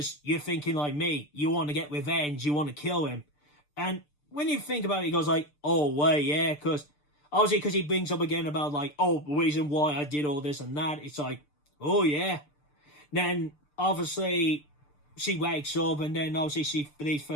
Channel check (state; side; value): late; right; 6.8 ms